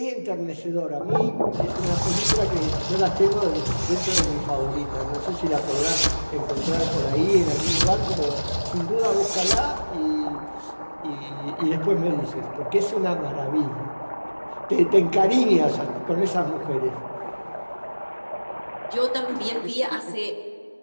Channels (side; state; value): both; inverted; correlation -1.00